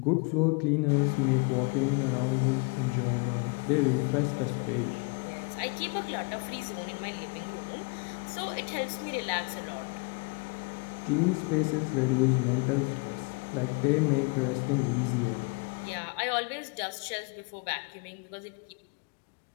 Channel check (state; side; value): quieter; right; 32.2 dB